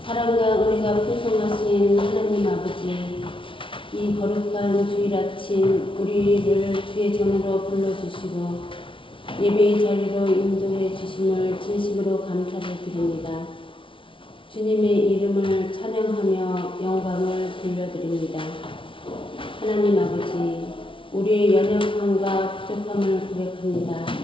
사랑과 은혜가 풍성하신 하나님 아버지, 이 거룩한 주일 아침 우리를 주의 전으로 불러주시고 예배의 자리로 인도해 주심을 진심으로 감사를 드립니다. 주님의 이름을 찬양하며 영광을 돌려드립니다. 하나님 아버지, 우리의 연약함과 부족함을 고백합니다.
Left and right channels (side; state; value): right; late; 0.25 ms